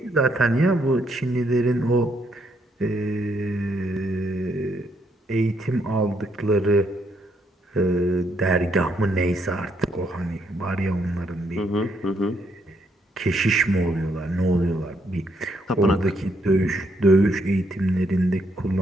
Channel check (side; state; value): both; normal; correlation 0.74